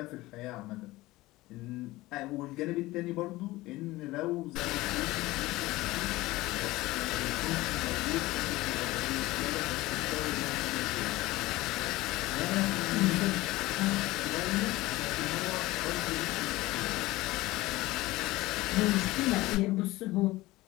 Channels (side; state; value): right; quieter; 19.0 dB